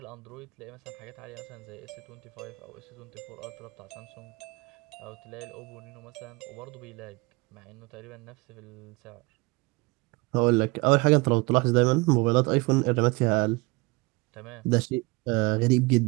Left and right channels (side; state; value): left; quieter; 25.4 dB